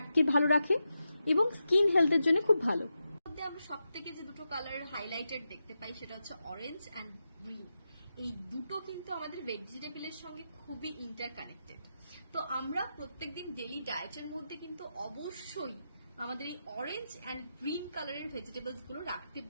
ভালো রাখে এবং স্কিন হেলথের জন্য খুব ভালো। আমরা সব থেকে যে দুটো কালার হাইলাইটেড দেখতে পাই সেটা হচ্ছে অরেঞ্জ অ্যান্ড গ্রিন। এই দুটো কিন্তু আমাদের ভেজিটেবলের সঙ্গে খুবই ইন্টারকানেক্টেড। তো আমরা প্রত্যেকদিন ডেইলি ডায়েটের মধ্যে কিন্তু অবশ্যই আমাদের এই অরেঞ্জ অ্যান্ড গ্রিন কালারের ভেজিটেবলস গুলো রাখতে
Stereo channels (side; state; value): both; inverted; correlation -0.88